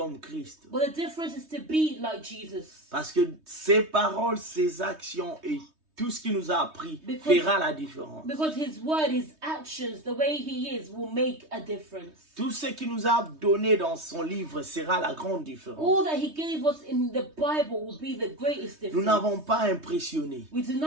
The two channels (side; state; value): left; late; 3.2 ms